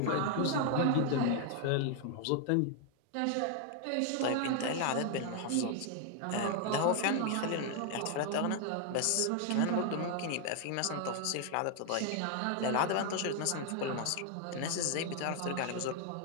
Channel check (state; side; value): different; both; correlation 0.00